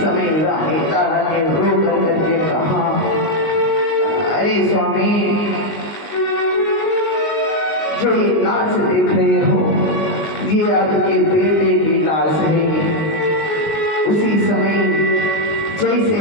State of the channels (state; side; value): late; right; 19 ms